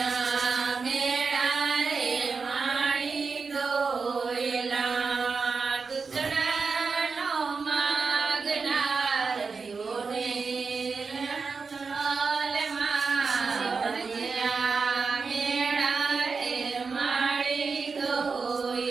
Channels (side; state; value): left; quieter; 4.9 dB